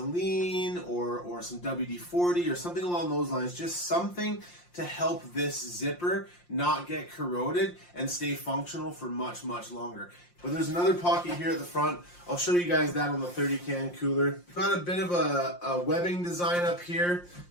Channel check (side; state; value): right; late; 5.7 ms